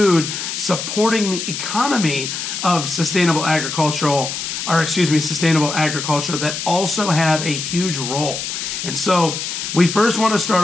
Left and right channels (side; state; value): left; noise; hiss, 5 dB below the sound